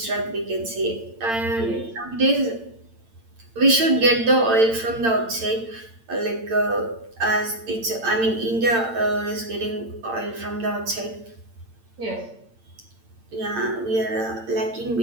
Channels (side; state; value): left; late; 8.8 ms